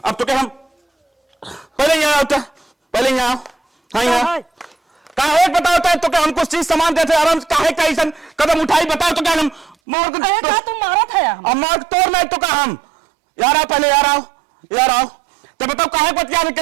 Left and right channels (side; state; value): left; drops out; at 9.8 s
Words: अब तो क्या हम पहले यहाँ आओ पहले यहाँ हाँ यहाँ काहे बताओ तो क्या हम कुछ चीज सामान देते आराम से काहे कैसन कदम उठाई बताओ तो क्या हम मोर को अरे का तुम मारा था यार अब मार तोड़ नहीं तो का हम यार आओ पहले यार आओ तो बताओ काहे बतिया